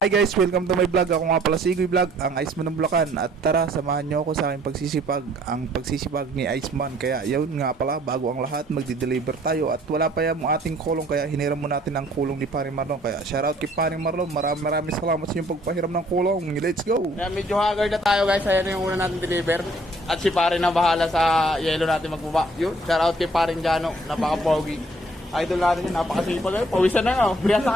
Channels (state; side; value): normal; both; correlation 0.60